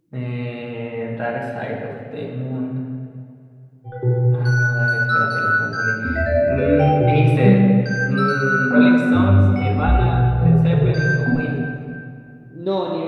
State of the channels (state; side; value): identical; both; correlation 1.00